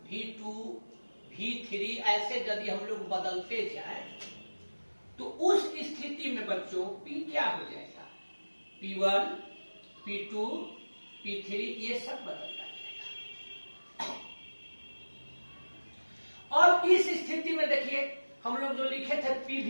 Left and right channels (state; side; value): inverted; both; correlation -1.00